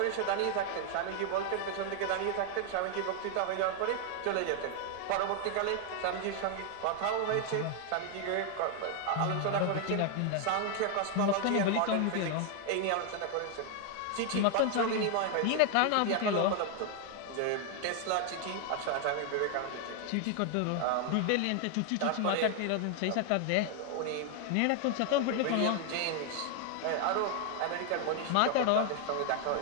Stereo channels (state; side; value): different; both; correlation 0.00